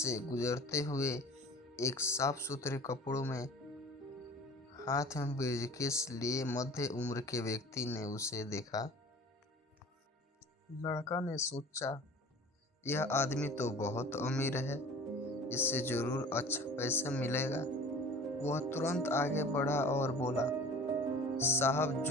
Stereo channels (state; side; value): normal; both; correlation 0.43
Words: गुजरते हुए एक साफ सुथरे कपड़ों में हाथ में ब्रीफकेस लिए मध्य उम्र के व्यक्ति ने उसे देखा। लड़का ने सोचा, यह आदमी तो बहुत अमीर है, इससे जरूर अच्छा पैसा मिलेगा। वह तुरंत आगे बढ़ा और बोला, साहब